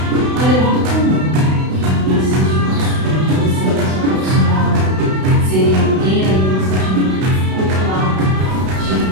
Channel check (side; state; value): left; late; 32 ms